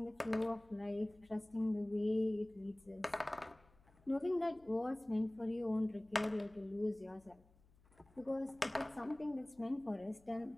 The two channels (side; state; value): left; noise; hum, 29 dB below the sound